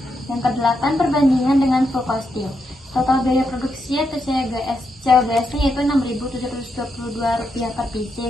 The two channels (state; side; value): normal; both; correlation 0.82